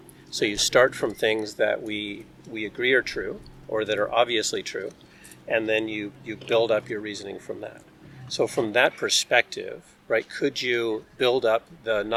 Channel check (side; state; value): both; identical; correlation 1.00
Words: So you start from things that we agree are true, or that are obviously true, and then you build up your reasoning from that. So from that perspective, right, could you build up the